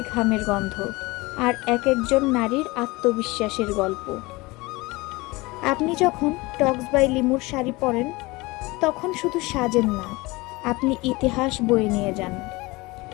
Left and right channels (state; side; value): quieter; right; 22.8 dB